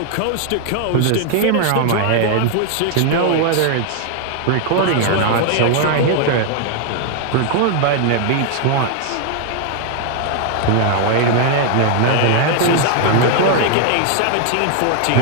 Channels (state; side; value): different; both; correlation 0.00